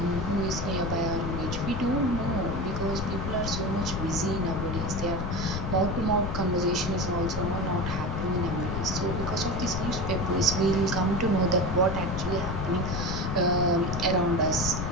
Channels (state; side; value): noise; left; rumble, 3 dB below the sound